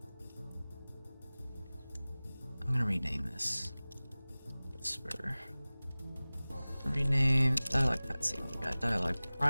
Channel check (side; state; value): both; inverted; correlation -0.99